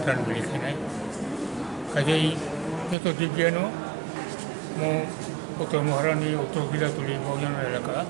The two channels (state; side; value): drops out; left; at 3.0 s